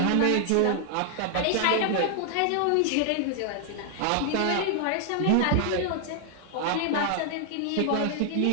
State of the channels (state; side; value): different; both; correlation 0.00